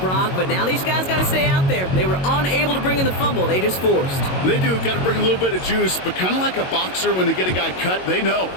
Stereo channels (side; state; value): right; late; 22 ms